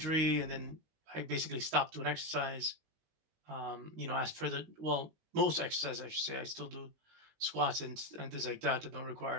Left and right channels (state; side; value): late; left; 19 ms